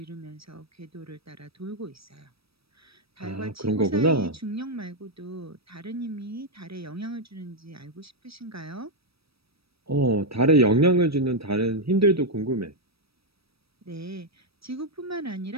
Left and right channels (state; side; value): late; left; 0.77 ms